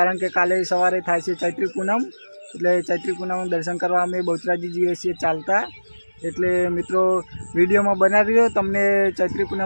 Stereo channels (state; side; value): inverted; both; correlation -1.00